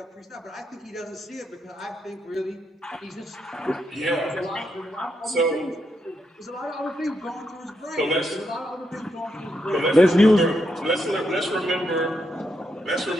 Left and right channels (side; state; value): both; normal; correlation 0.81